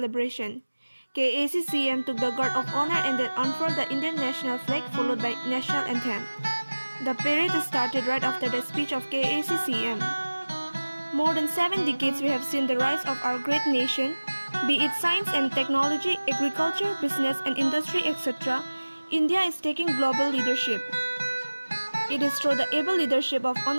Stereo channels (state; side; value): inverted; both; correlation -1.00